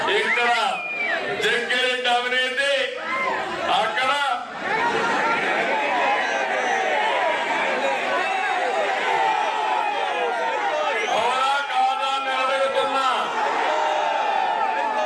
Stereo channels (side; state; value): both; identical; correlation 1.00